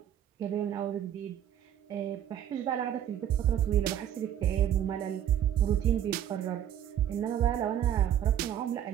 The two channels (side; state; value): left; quieter; 10.3 dB